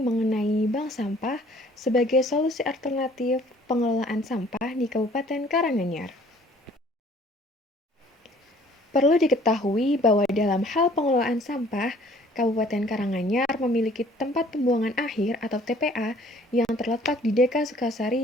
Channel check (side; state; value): both; normal; correlation 0.56